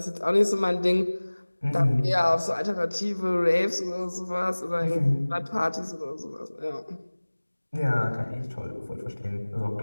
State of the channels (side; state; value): both; inverted; correlation -1.00